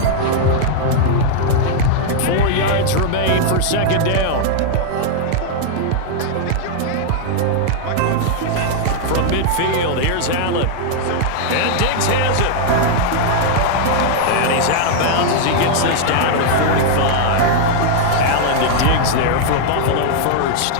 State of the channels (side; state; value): both; different; correlation -0.01